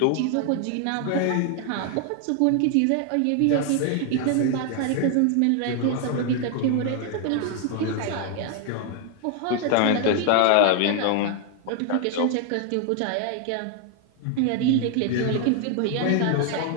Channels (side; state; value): both; different; correlation 0.00